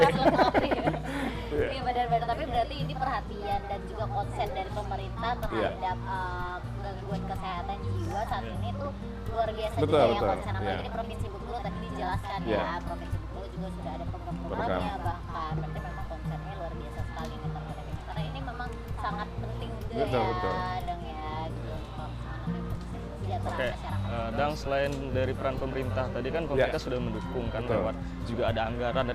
Iya benar-benar, tapi berarti ini perhatian dan juga konsen dari pemerintah terhadap gangguan kesehatan jiwa saat ini tuh luar biasa juga yang konsen. Apalagi di Provinsi Bengkulu tadi dijelaskan ya, Provinsi Bengkulu juga sudah ada program-programnya, bahkan berarti memang konsennya luar biasa sekali nih terhadap ini, karena ini memang sangat penting juga dan ya gitu. Oke, dan selain dari peran pemerintah, tadi kan pemerintah sudah mendukung kan lewat juga ada anggaran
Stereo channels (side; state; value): both; identical; correlation 1.00